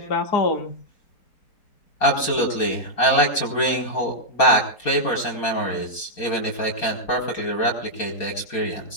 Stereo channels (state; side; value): late; right; 4.3 ms